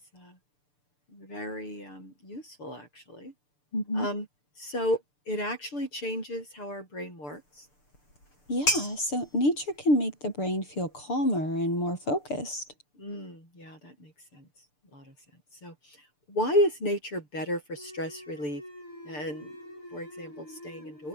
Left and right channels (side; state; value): right; late; 6.8 ms